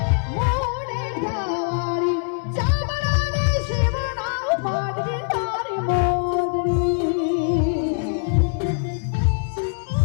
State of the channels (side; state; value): right; silent; 64 dB below the other